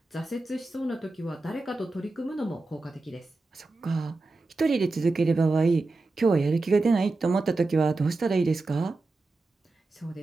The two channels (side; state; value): left; quieter; 3.3 dB